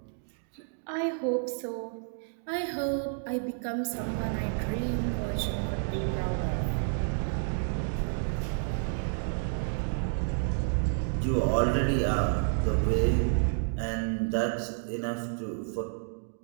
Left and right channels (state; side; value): silent; left; 58 dB below the other